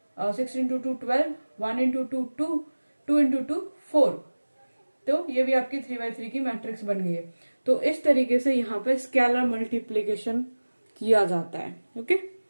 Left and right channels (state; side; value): inverted; both; correlation -1.00